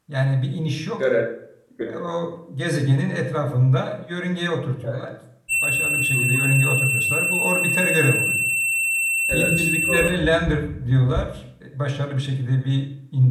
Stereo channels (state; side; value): identical; both; correlation 1.00